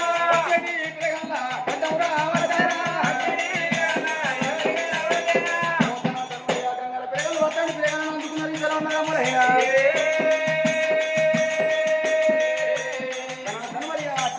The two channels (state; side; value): identical; both; correlation 1.00